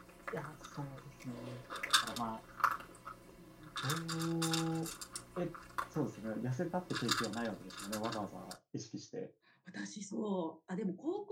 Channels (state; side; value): identical; both; correlation 1.00